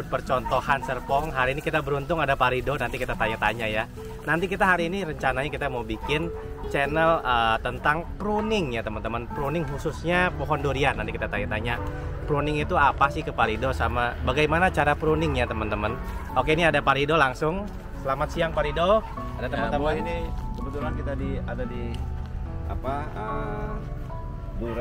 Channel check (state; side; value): identical; both; correlation 1.00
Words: percontohan Serpong. Hari ini kita beruntung ada Pak Rido, nanti kita tanya-tanya ya. Nanti kita hari ini rencananya kita mau bikin channel tentang pruning ya teman-teman. Pruning khususnya pohon durian. Nanti kita tanya-tanya pruning itu apa sih ke Pak Rido, sama bagaimana cara pruning ya teman-teman. Oke, ini ada Pak Rido langsung. Selamat siang Pak Rido. Ada teman-teman. Ini kebetulan kita ada di